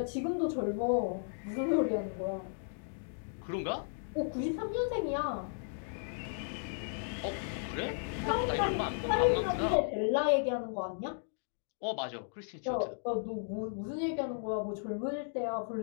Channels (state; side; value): silent; right; digital silence